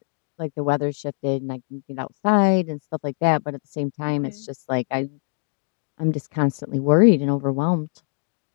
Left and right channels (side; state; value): right; silent; digital silence